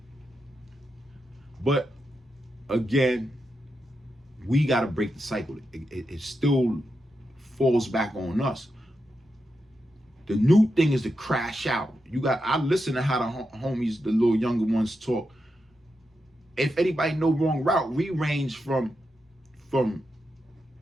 But again, we got to break the cycle. It still falls back on us. The new thing is to crash out. I listen to how the homies, the little younger ones talk. If anybody know Wrong Route, we range from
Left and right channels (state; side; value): normal; both; correlation 0.87